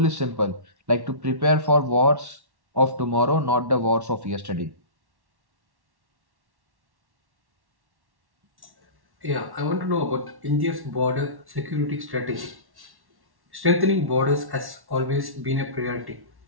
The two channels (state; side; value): late; left; 1.1 ms